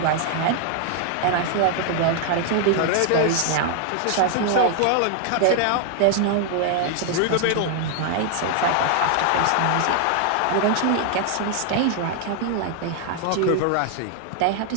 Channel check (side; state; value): both; different; correlation 0.00